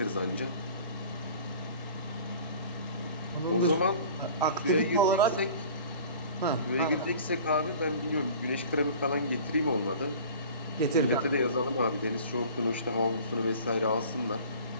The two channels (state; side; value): inverted; both; correlation -0.44